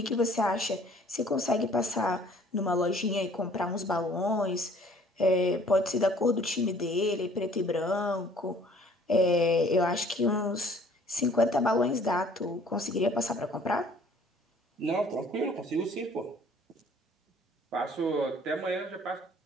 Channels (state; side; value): normal; both; correlation 0.55